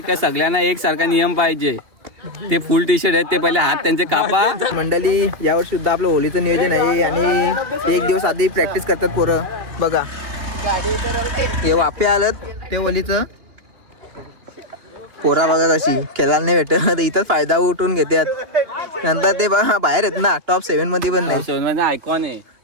की सगळ्यांना एक सारखा नियम पाहिजे. ते फुल टी शर्ट आहेत ते पहिले हात त्यांचे कापा. मंडळी यावर्षी सुद्धा आपलं होलीचं नियोजन आहे. आणि 1 दिवस आधी प्रॅक्टिस करतात पोरं. बघा हे वाफे आलं ते होलीचं. पोरा बघा कशी खेळायला नाही भेटत. इथंच फायदा उठून घेतात. नंतर ते बाहेर आहेत ना टॉप 7 मध्ये पण नाही. आयकॉन आहे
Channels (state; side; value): late; left; 2.9 ms